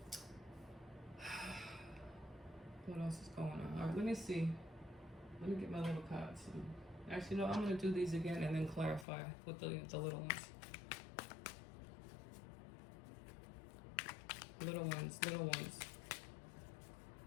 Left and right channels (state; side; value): drops out; right; at 9.1 s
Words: What else is going on? All right, let me see. Let me get my little cards. Actually, no, I'm going to do these again and then clarify with the little ones. Little ones.